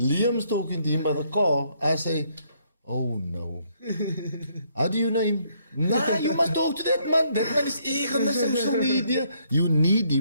talking to him by the car. I say, oh no. How do you know him? Nah, you must talk to that man. That man is eager on the social media. You need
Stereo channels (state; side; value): inverted; both; correlation -0.70